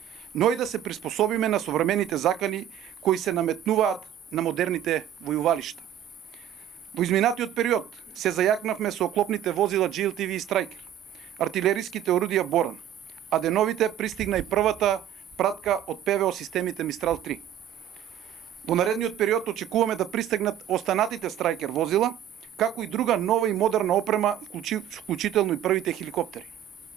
но и да се приспособиме на современите закани кои се наметнуваат на модерните војувалишта. Во изминатиот период се зајакнавме со оклопните возила GLTV и Striker, артилериските орудија Боран, а деновите пристигна и првата пратка од ПВО системите Мистрал 3. Во наредниот период очекуваме да пристигнат останатите Striker возила, како и друга нова и модерна опрема, вклучително и првите хеликоптери.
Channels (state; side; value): quieter; left; 10.9 dB